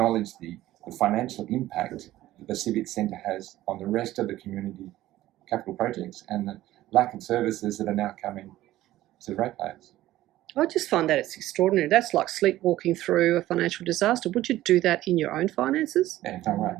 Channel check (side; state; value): left; quieter; 15.1 dB